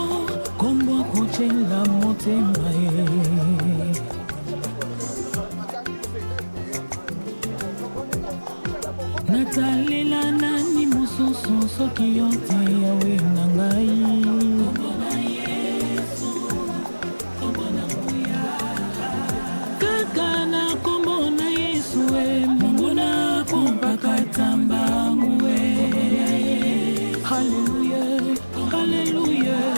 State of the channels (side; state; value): both; inverted; correlation -1.00